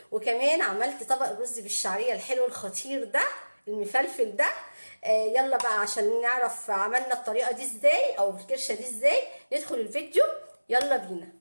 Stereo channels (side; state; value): both; inverted; correlation -1.00